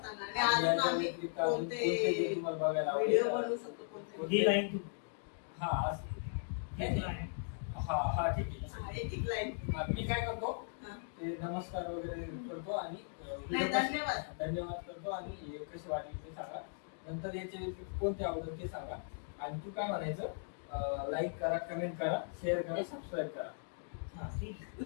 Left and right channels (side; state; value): right; silent; digital silence